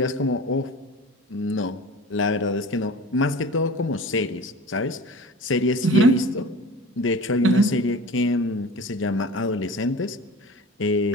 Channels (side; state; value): both; normal; correlation 0.37